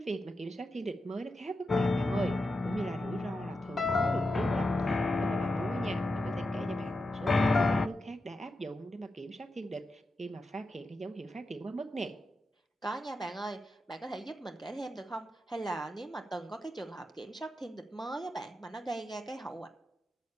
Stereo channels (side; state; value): both; normal; correlation 0.89